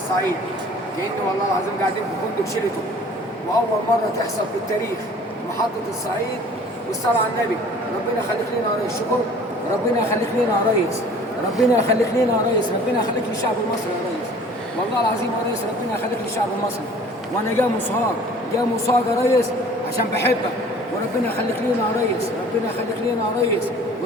كأنه والله العظيم قاعدين في فندق شيراتون، وأول مرة تحصل في التاريخ محطة الصعيد والصلاة على النبي. ربنا يخليك لنا يا ريس. شكر. ربنا يخليك لنا يا ريس. ربنا يخليك لنا يا ريس. ربنا يخليك للشعب المصري يا ريس. والله العظيم يا ريس ربنا يخليك للشعب المصري. وانا جاي مصاب يا ريس عشان بحبك، وربنا يخليك لنا يا ريس. ربنا يخليك لنا يا ريس.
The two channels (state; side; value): normal; both; correlation 0.49